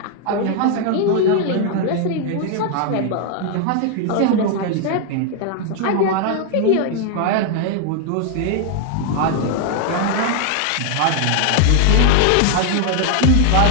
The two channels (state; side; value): different; both; correlation 0.00